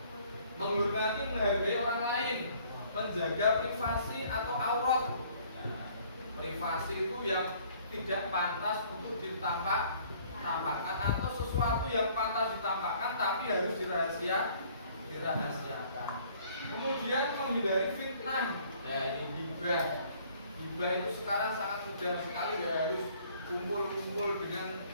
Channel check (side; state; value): both; inverted; correlation -0.58